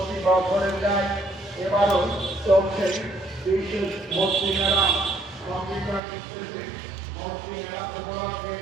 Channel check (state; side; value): drops out; left; at 6.0 s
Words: বছরের ন্যায় এবারও চলছে বিশেষ ভর্তি মেলা। কম্পিউটার শিখতেছে ভর্তি মেলা উপলক্ষে